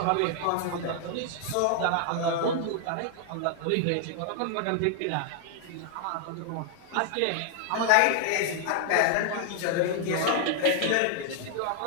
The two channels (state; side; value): different; both; correlation 0.00